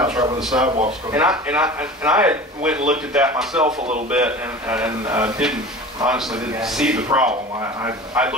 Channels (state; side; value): normal; both; correlation 0.36